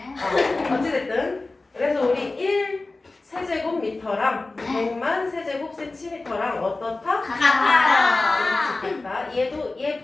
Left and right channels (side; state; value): right; quieter; 3.3 dB